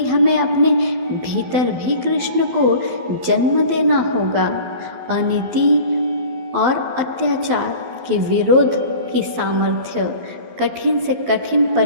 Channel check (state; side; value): late; left; 12 ms